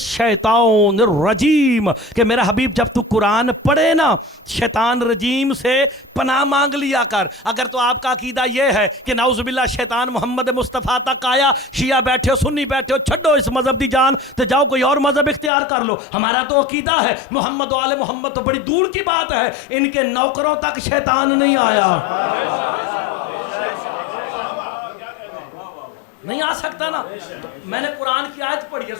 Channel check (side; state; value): right; drops out; at 15.5 s